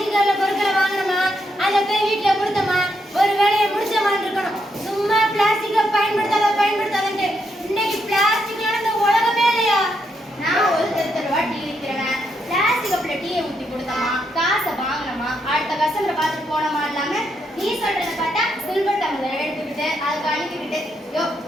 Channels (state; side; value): normal; both; correlation 0.79